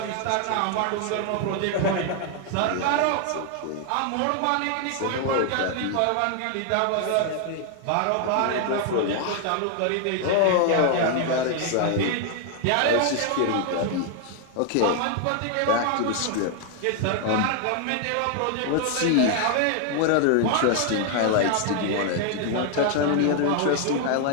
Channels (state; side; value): different; both; correlation 0.00